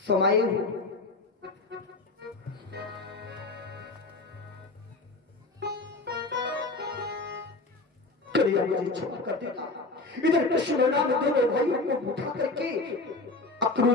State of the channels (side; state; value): right; quieter; 3.3 dB